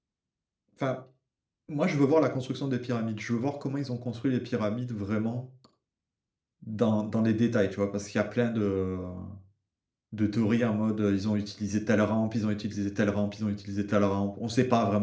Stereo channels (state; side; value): identical; both; correlation 1.00